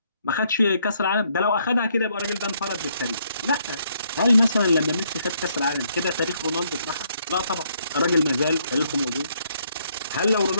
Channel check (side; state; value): both; inverted; correlation -0.71